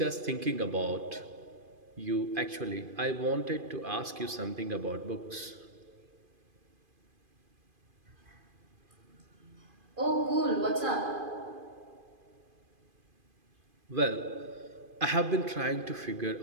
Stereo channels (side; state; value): left; late; 2.5 ms